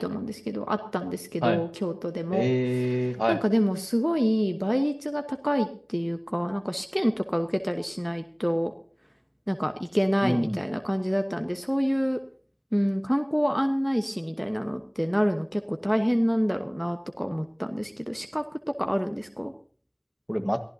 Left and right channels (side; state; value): both; identical; correlation 1.00